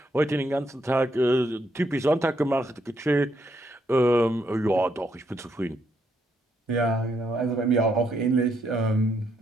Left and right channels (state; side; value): normal; both; correlation 0.76